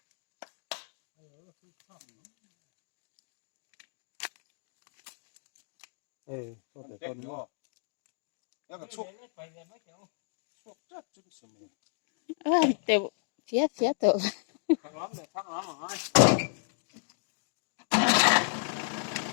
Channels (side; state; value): right; silent; digital silence